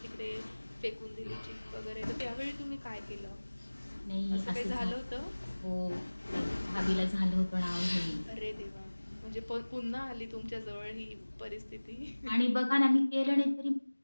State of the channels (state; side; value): inverted; both; correlation -1.00